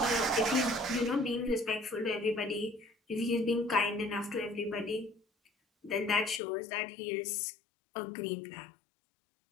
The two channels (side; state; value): right; drops out; at 6.4 s